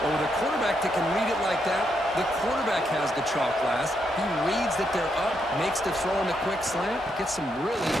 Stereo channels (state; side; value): normal; both; correlation 0.79